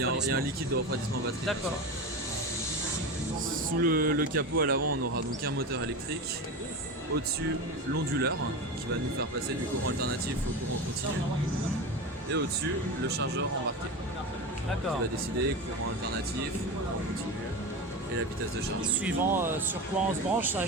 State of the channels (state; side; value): normal; both; correlation 0.23